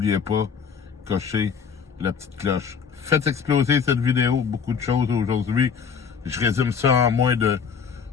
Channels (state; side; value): quieter; right; 6.4 dB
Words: pas, cochez la petite cloche. Faites exploser cette vidéo, beaucoup de choses aujourd'hui. Je résume ça en moins de